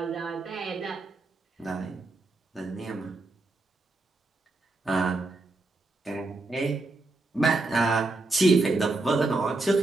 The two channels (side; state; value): left; quieter; 3.1 dB